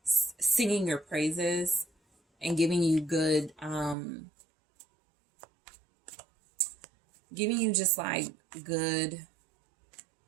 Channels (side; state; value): left; drops out; at 4.0 s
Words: singing your praises and giving you good, giving you just like good